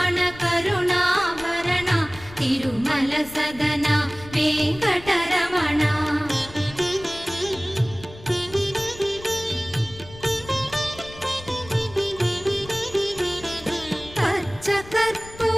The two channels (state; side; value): noise; left; rumble, 18 dB below the sound